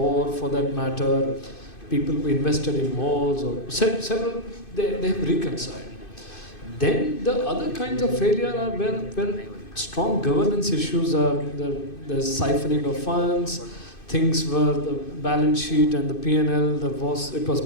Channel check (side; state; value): right; late; 2.5 ms